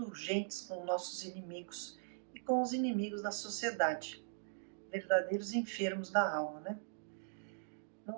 com nossos inimigos e com os inimigos da sociedade, verdadeiros enfermos da alma, né?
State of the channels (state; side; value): silent; left; digital silence